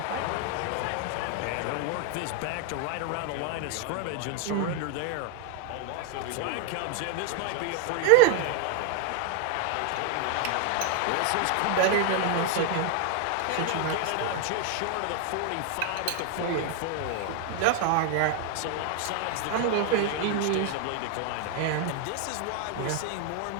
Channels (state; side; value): different; both; correlation 0.00